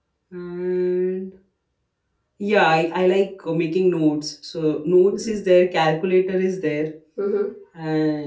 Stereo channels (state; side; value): identical; both; correlation 1.00